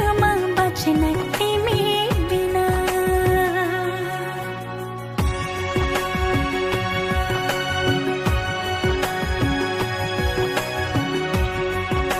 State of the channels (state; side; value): identical; both; correlation 1.00